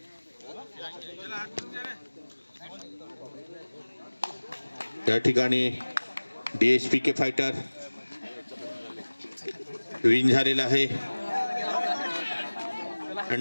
या ठिकाणी DSPK फायटर विन झालेला आहे.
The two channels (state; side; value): inverted; both; correlation -1.00